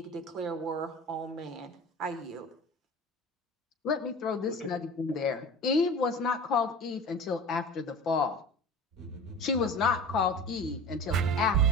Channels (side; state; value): both; normal; correlation 0.36